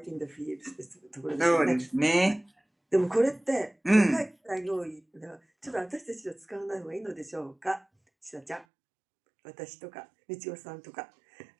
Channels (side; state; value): left; drops out; at 8.7 s